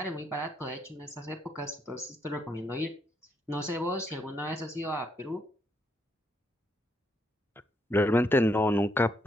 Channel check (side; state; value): both; normal; correlation 0.76